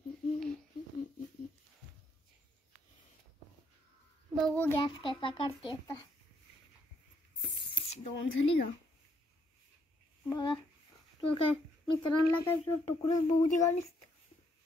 बघू गॅस कसा काढते आता. दोन झाली का बघा. तू काय मित्रांना काय तुकडं बघू दे का नुसतं.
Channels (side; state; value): both; normal; correlation 0.72